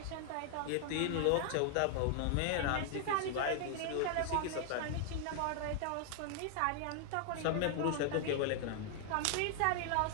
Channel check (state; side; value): different; both; correlation 0.00